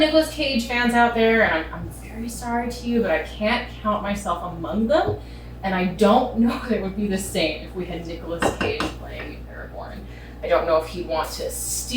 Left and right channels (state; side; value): identical; both; correlation 1.00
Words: Cage fans out there, and I'm very sorry to you, but I can't count myself among them. And I don't know that it would be the same if we had Nicolas Cage playing Aragorn. I don't know if he'd want to